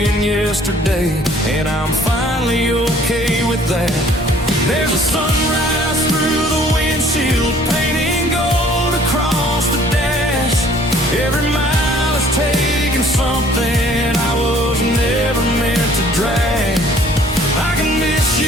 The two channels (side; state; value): both; normal; correlation 0.56